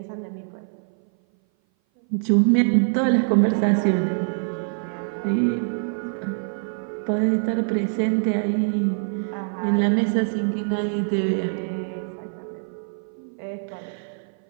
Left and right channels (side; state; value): left; silent; 58 dB below the other